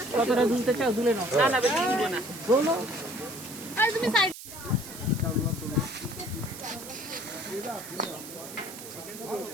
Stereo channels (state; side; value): noise; right; hiss, 13 dB below the sound